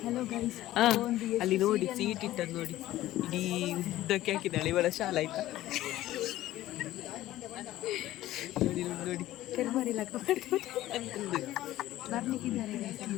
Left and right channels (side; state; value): right; quieter; 15.0 dB